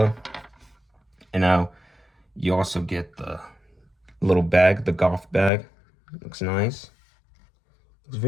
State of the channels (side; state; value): right; drops out; at 5.5 s